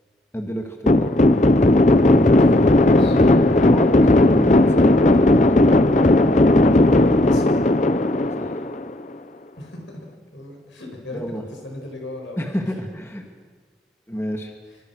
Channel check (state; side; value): normal; both; correlation 0.69